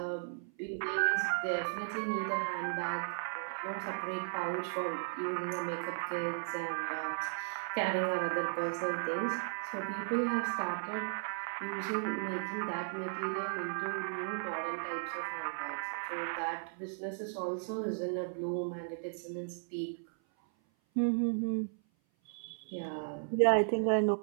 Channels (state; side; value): silent; left; 54 dB below the other